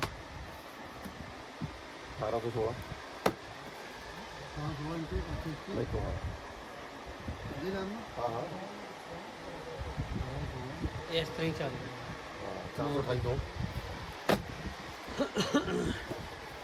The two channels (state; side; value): identical; both; correlation 1.00